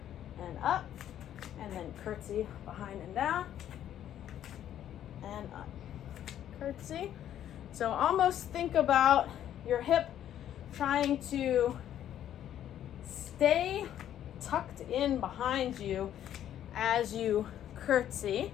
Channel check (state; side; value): quieter; right; 10.9 dB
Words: and up, and then curtsy behind and down and up. Curtsy. So almost think about your hip trying to stay tucked in behind you as you curtsy.